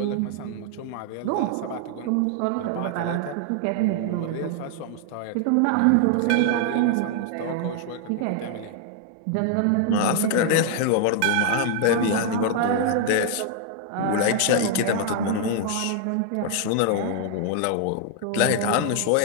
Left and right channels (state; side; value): different; both; correlation 0.00